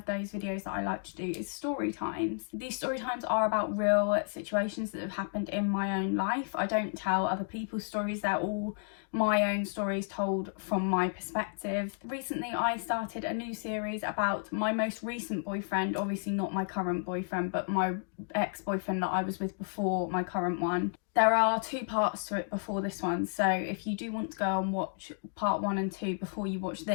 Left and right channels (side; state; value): right; silent; digital silence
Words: those videos that I like to do is story times. These story times are about real situations that have happened in my own life. I don't tell other people's stories, they're all my own stories told from my perspective. Recently I started a new series about my most recent boyfriend, obviously not my current boyfriend, but my ex-boyfriend that I was with before my current one. There are two parts to it before this one, so if you do want to go and watch part 1 and 2 before you watch